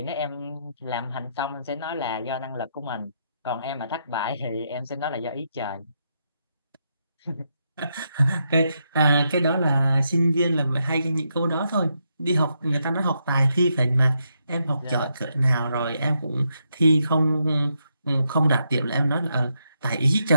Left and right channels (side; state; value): both; inverted; correlation -0.81